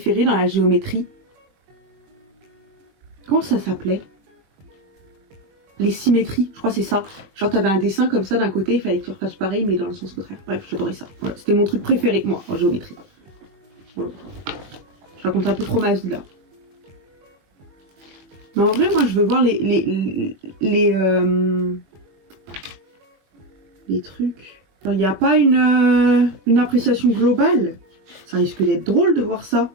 dans la géométrie? Comment ça s'appelait? Les symétries, je crois que c'est ça. Genre t'avais un dessin comme ça d'un côté, il fallait que tu refasses pareil mais dans le sens contraire. Bref, j'adorais ça. Voilà, c'était mon truc préféré, moi, en géométrie. Voilà. Je raconte un peu trop ma vie là. Mais en vrai, moi je veux voir les trucs. Il n'y a pas une appréciation globale. Ça risque d'être drôle de voir ça.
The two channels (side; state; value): left; late; 21 ms